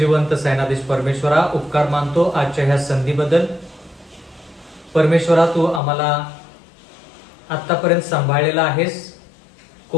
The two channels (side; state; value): right; drops out; at 5.8 s